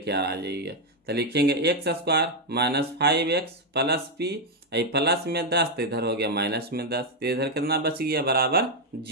आ जाइए, तो लिखेंगे x square minus 5x plus P, plus में 10 तो इधर हो गया माइनस में 10, तो इधर कितना बच गया, बराबर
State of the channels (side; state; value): both; normal; correlation 0.02